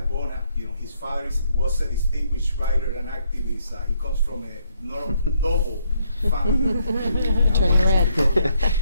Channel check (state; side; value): inverted; both; correlation -0.73